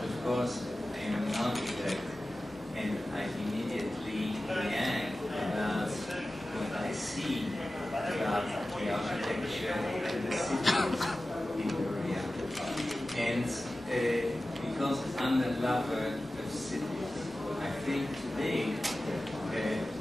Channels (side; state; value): both; normal; correlation 0.95